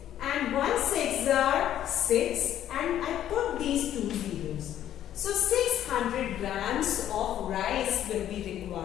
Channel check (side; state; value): right; quieter; 11.3 dB